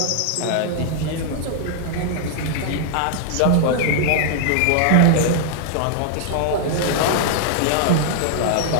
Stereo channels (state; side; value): different; both; correlation -0.01